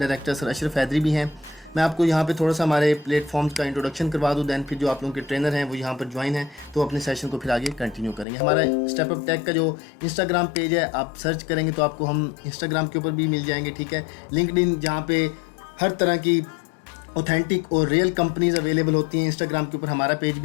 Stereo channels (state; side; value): drops out; right; at 8.2 s